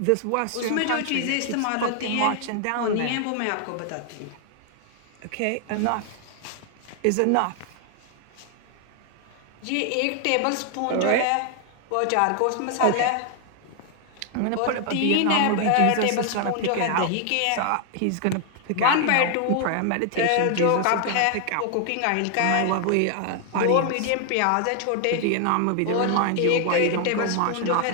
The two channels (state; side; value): different; both; correlation 0.00